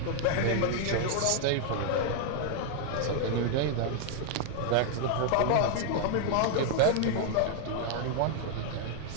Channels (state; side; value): different; both; correlation 0.00